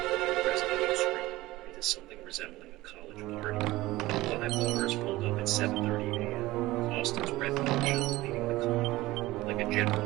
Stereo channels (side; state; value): left; quieter; 18.3 dB